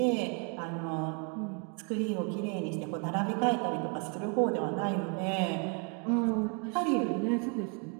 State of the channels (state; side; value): quieter; left; 35.8 dB